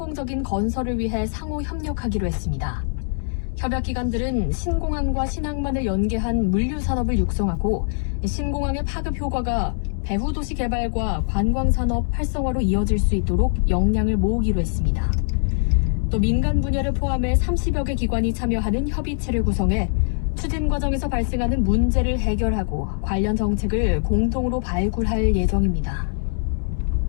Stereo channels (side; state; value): right; silent; digital silence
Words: 건설을 위해 상호 협력하기로 했습니다. 협약기관들은 신공항과 신항만을 연계한 물류산업을 육성하고 신공항의 파급 효과가 배후 도시 개발과 관광산업 활성화로 이어질 수 있도록 역량을 모으기로 했습니다. 또 민간 분야를 포함해 30여 개 기관이 참여하는 협의체를 구성해 추진 과정에서 발생하는 문제를 해결하고 관련 정책을 공동으로 발굴할 예정입니다.